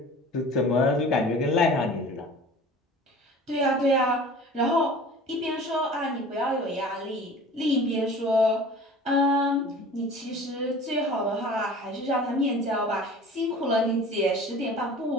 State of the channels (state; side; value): normal; both; correlation 0.42